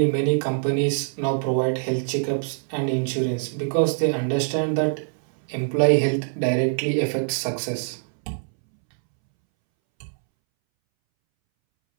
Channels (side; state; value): left; silent; 63 dB below the other